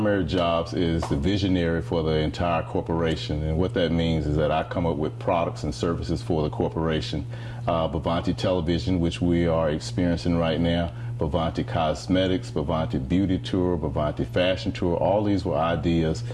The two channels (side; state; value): both; identical; correlation 1.00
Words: jobs is the visionary for the entire corporation, and what that means is that I come up with products and services for the corporation. Bovanti Television, which we are experiencing right now, Bovanti Cosmetics, Bovanti Beauty Tour, Bovanti Fashion Tour, all these were ideas